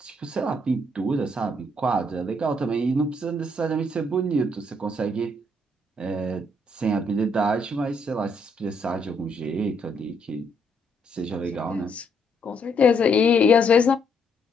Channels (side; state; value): both; normal; correlation 0.72